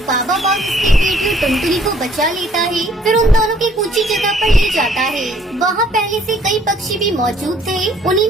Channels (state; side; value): normal; both; correlation 0.61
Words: बाबा बाघ उसकी बेटी और टुनटुनी को बचा लेता है। फिर उन दोनों की ऊंची जगह पर ले जाता है। वहाँ पहले से कई पक्षी भी मौजूद थे, उन्हीं